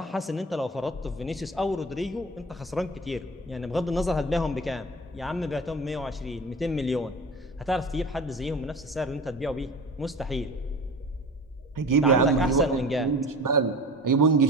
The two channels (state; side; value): normal; both; correlation 0.36